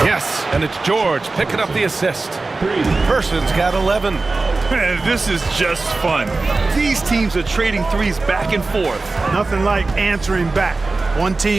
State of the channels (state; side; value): quieter; left; 3.5 dB